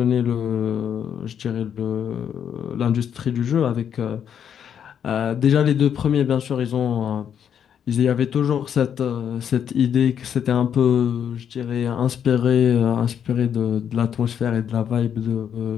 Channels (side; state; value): right; quieter; 8.5 dB